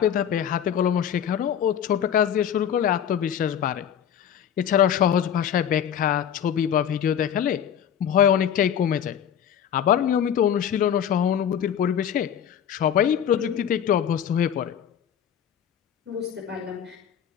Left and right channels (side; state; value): right; quieter; 9.1 dB